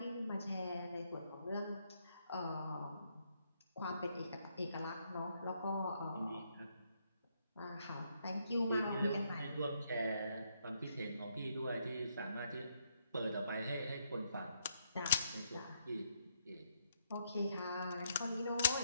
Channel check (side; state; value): both; inverted; correlation -0.75